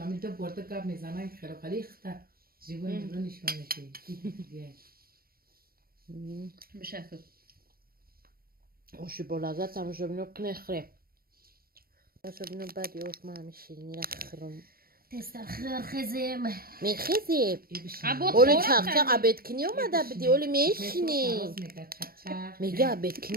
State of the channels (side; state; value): left; late; 0.43 ms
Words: برده کب میزنن خیلی خیلی خطر جیبون جیبون نشون میشه بشکل اوشی با لذت تماشا بینو کنه خره تماشا بینو بعدی اوش من همه شیرینی را خرم تستخر خزم میخیزی ابو اولی خورا چاق چاق عبید کنی اومده بدی اولی میشینی میگه میگه عبید